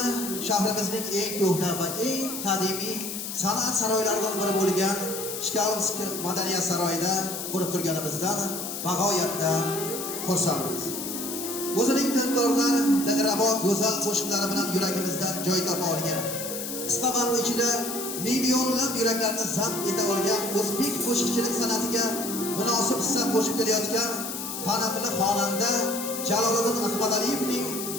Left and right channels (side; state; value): left; noise; hiss, 6 dB below the sound